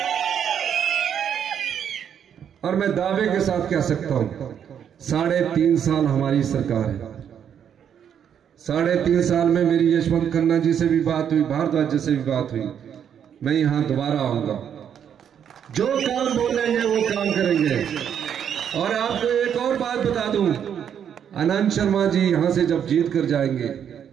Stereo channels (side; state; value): left; quieter; 8.6 dB